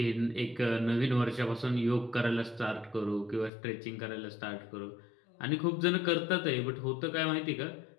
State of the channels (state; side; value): drops out; right; at 3.5 s